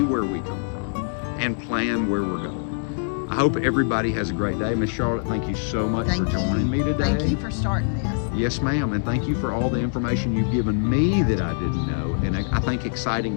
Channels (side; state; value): right; silent; digital silence